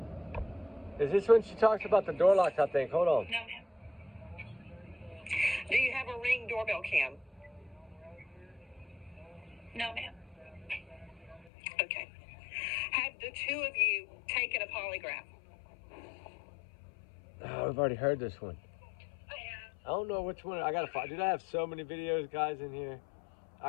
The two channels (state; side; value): drops out; right; at 11.5 s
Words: Is this when she talks about the door locks, I think? Hold on. No, ma'am. Do you have a Ring doorbell cam? No, ma'am. Okay. Have the two of you taken a polygraph? Oh, we've already heard this one. I have. I don't know which one. I gotta find. Dude, I have so many videos, guys, in here.